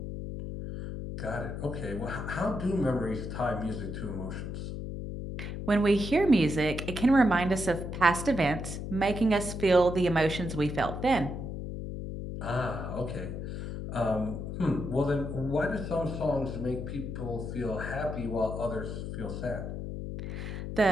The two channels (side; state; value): left; noise; hum, 6 dB below the sound